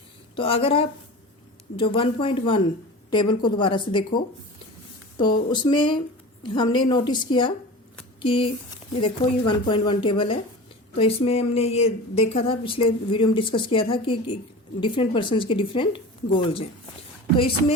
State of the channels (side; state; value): both; normal; correlation 0.34